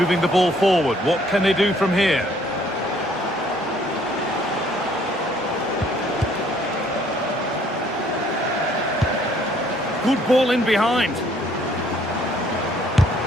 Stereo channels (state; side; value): normal; both; correlation 0.62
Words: the ball forward. What can they do from here? Good ball in behind.